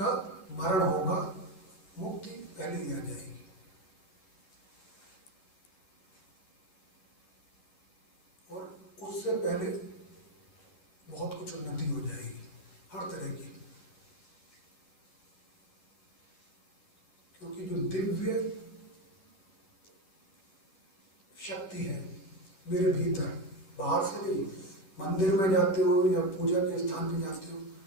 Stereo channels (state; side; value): late; right; 14 ms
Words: मरण होगा, मुक्ति पहले ही आ जाएगी। उससे पहले बहुत कुछ उन्नति हो जाएगी, हर तरह की। क्योंकि जो दिव्य शक्ति है मेरे भीतर, बाहर से नहीं, मंदिर में जाते हो या पूजा के स्थान पे जाते हो